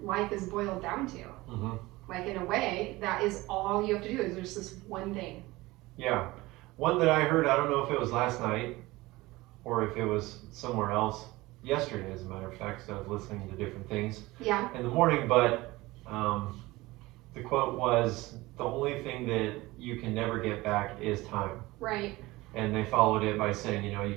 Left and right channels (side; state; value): left; quieter; 20.1 dB